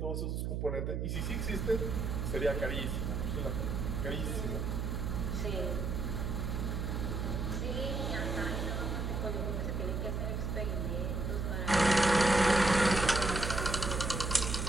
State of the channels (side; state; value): right; noise; hum, 1 dB below the sound